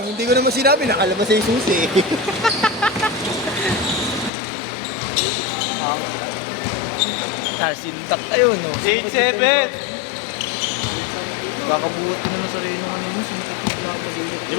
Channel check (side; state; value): right; drops out; at 4.3 s